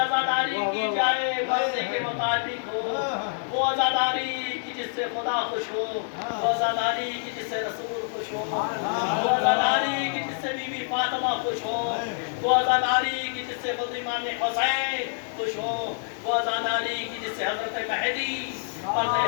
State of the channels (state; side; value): silent; right; digital silence